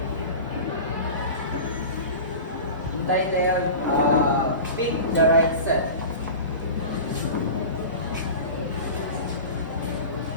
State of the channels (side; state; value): both; inverted; correlation -0.33